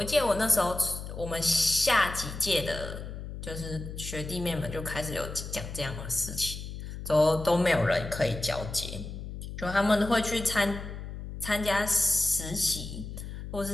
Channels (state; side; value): noise; left; hum, 9 dB below the sound